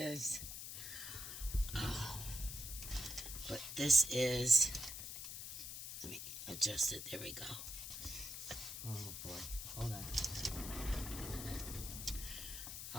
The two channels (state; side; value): noise; left; hiss, 7 dB below the sound